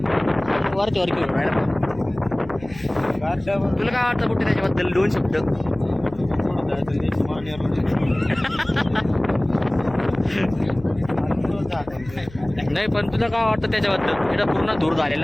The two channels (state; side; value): noise; left; hum, 19 dB below the sound